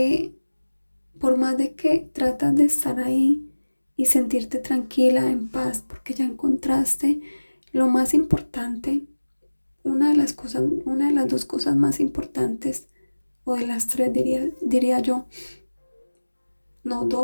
por más de que tratas de estar ahí y sentirte tranquila, en paz, porque ya encontraste lo más importante, una de las dos cosas más importantes, o de las tres diría yo, no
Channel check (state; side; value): inverted; both; correlation -1.00